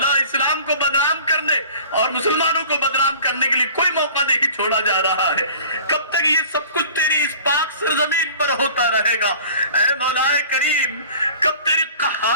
اسلام کو بدنام کرنے اور مسلمانوں کو بدنام کرنے کے لیے کوئی موقع نہیں چھوڑا جا رہا ہے. کب تک یہ سب کچھ تیری اس پاک سرزمین پر ہوتا رہے گا؟ اے مولا کریم، کب تیری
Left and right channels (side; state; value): both; inverted; correlation -0.45